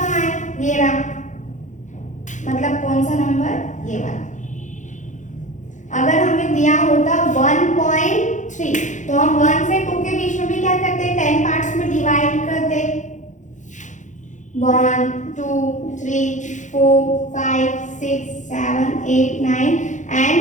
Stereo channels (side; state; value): right; late; 0.36 ms